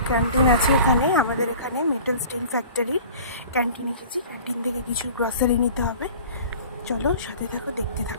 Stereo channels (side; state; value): both; inverted; correlation -0.44